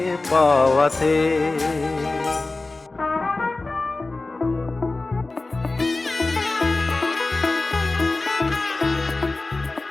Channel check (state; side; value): quieter; right; 3.3 dB